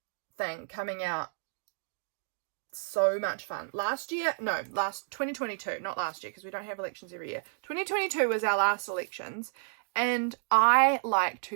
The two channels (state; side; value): silent; left; digital silence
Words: thing coming out. So much fun. 2022, not last year, because we don't have elections every year. 2022 was our last elections, and I like